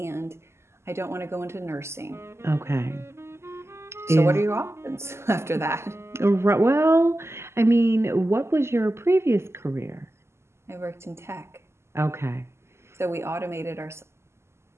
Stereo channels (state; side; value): late; left; 0.13 ms